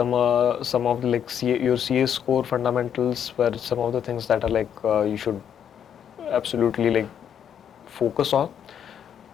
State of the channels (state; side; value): quieter; right; 8.7 dB